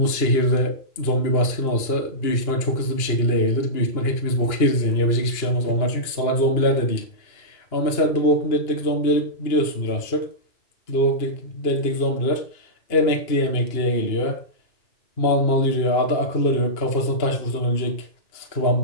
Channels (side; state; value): right; late; 2.8 ms